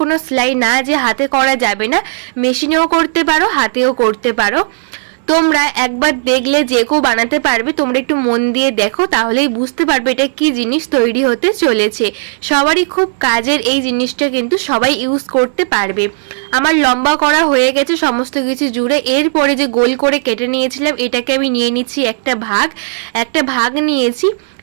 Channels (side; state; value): left; silent; digital silence